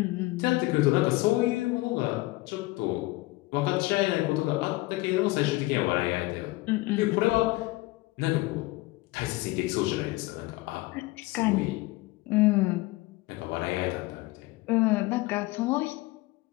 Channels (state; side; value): quieter; right; 20.6 dB